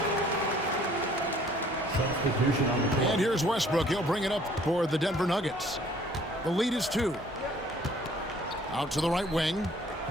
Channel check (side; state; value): both; normal; correlation 0.57